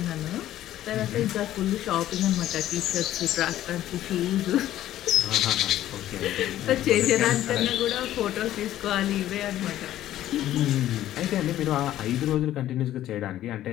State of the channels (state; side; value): quieter; right; 13.1 dB